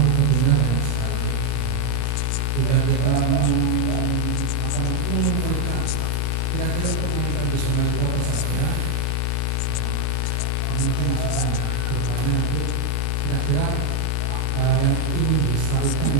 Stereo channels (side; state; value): both; different; correlation 0.00